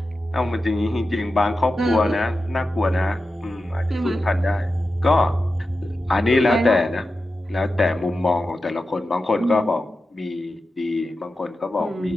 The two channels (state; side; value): normal; both; correlation 0.92